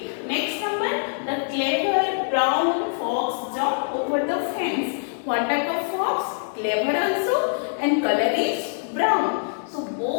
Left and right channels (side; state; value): right; silent; digital silence